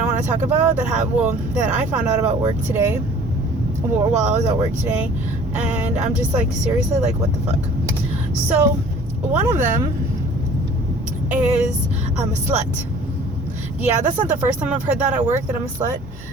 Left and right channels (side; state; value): both; normal; correlation 0.50